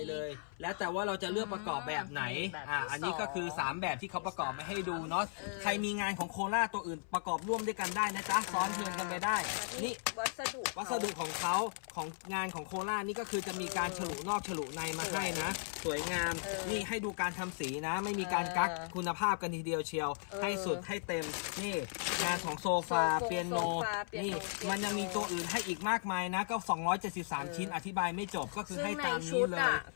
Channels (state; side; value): silent; right; 53 dB below the other